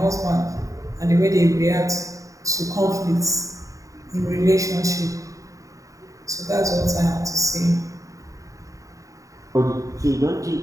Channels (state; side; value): late; left; 0.16 ms